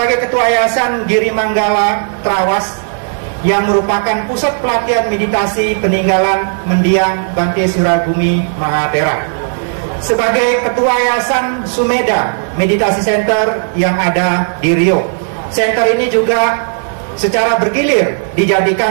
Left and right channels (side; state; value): left; silent; digital silence